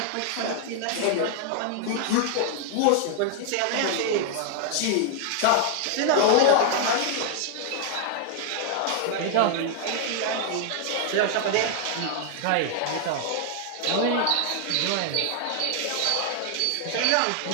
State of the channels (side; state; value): both; different; correlation 0.00